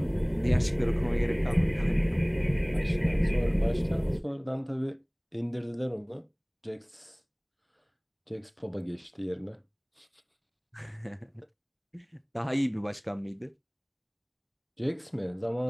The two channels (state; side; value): identical; both; correlation 1.00